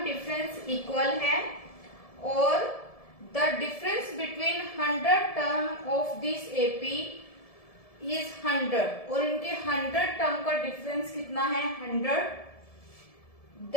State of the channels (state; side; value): late; right; 1.7 ms